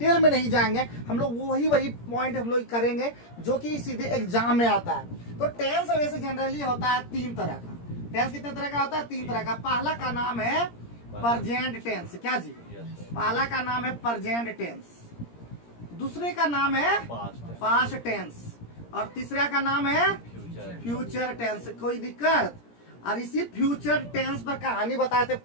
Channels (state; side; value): late; right; 17 ms